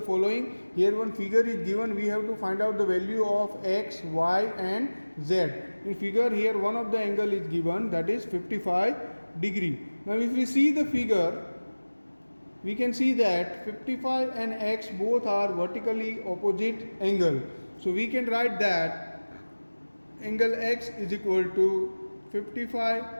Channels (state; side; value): inverted; both; correlation -1.00